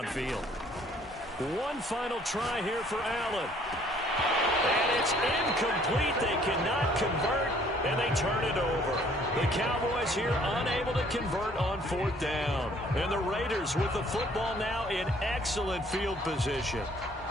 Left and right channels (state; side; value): normal; both; correlation 0.60